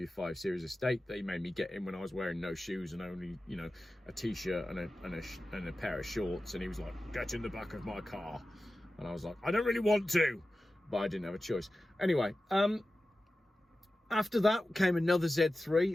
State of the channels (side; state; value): both; normal; correlation 0.94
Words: 5 Series estate that he made me get in when I was wearing no shoes and only, a t-shirt and a pair of shorts. And he was like, get in the back of my car. And I was like, I don't really want to, but I didn't have a choice. Anyway, after that came another